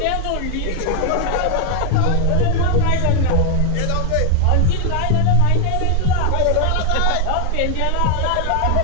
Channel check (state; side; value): different; both; correlation 0.00